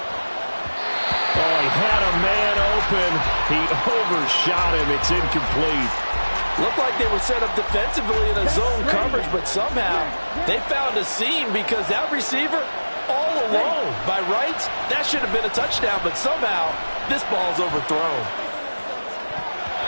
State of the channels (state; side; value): inverted; both; correlation -1.00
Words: Oh, he had a man open. He overshot him. It's incomplete. Looked like they were set up defensively in a zone coverage, but somehow they found a seam, because that receiver all alone. By rights, that should have been a touchdown, but somehow this ball's overthrown.